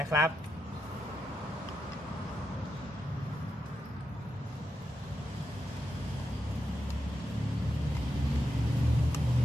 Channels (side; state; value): both; normal; correlation 0.86